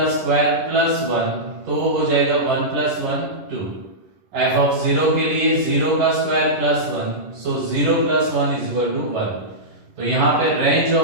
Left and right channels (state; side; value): late; left; 11 ms